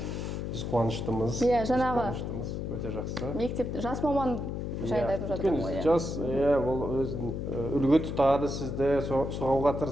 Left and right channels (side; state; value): left; noise; hum, 4 dB below the sound